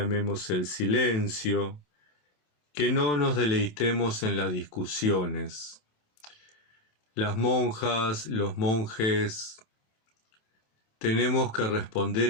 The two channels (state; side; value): late; right; 27 ms